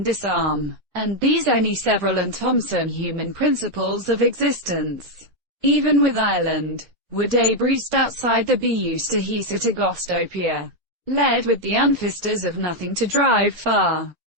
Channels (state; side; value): normal; both; correlation 0.02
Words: disarm, and these any several and Thomson human principles of existence, even with Ireland, were debrised outside the be used to hisa to gostopia, led with the unfisters of nothing to drive far,